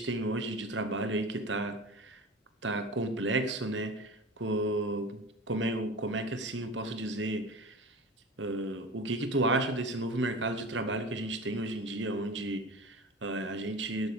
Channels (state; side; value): normal; both; correlation 0.33